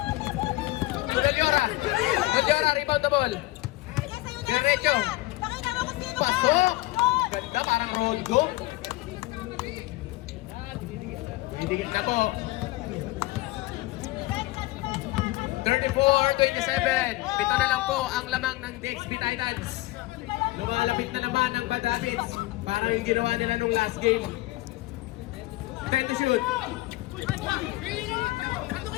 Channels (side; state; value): right; quieter; 19.6 dB